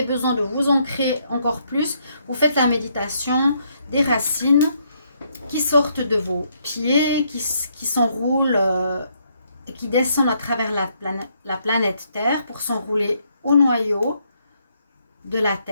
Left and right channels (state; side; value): inverted; both; correlation -0.73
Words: besoin de vous ancrer encore plus, vous faites la méditation des racines qui sortent de vos pieds, qui s'enroulent, qui descendent à travers la planète Terre pour s'enrouler au noyau de la